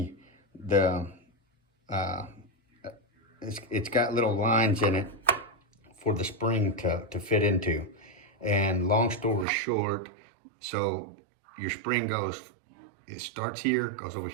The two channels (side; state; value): left; drops out; at 9.5 s